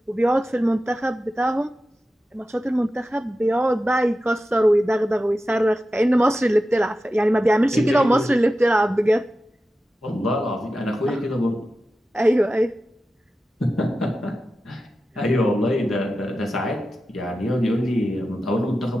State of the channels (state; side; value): normal; both; correlation 0.93